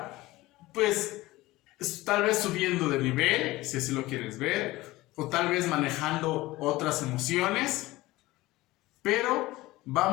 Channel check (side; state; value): right; quieter; 18.7 dB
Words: pues, tal vez subiendo de nivel, si así lo quieres ver, o tal vez manejando otras emociones, pero